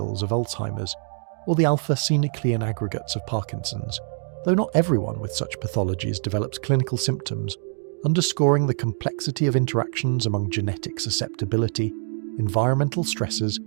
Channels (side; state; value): left; silent; 61 dB below the other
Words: of Alzheimer's, or the alpha-synuclein aggregates of Parkinson's, though not everyone with such pathologies develops clinical symptoms, underscoring the complexity of interactions among genetic susceptibility, environmental stresses,